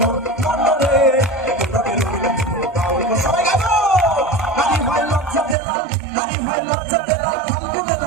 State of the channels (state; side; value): drops out; left; at 5.6 s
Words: একটু রঙে রঙিন বাউল সবাই গাবো নারী ভাই লজ্জা পেলাম নারী ভাই লজ্জা পেলাম ফাল্গুনে